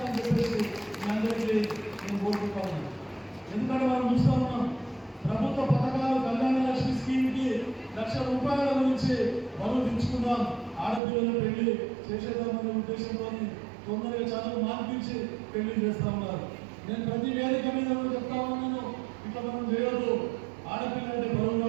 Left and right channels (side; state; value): left; drops out; at 11.0 s